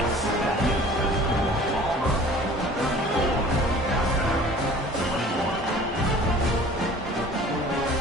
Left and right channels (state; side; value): normal; both; correlation 0.47